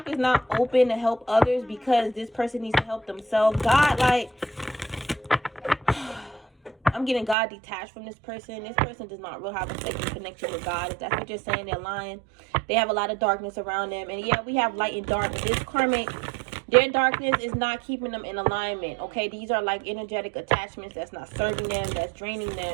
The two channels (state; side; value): drops out; left; at 7.4 s